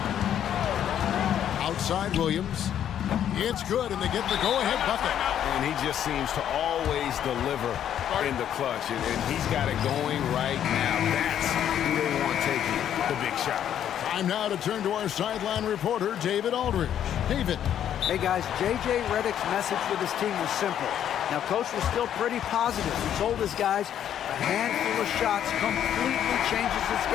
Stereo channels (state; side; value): quieter; right; 10.1 dB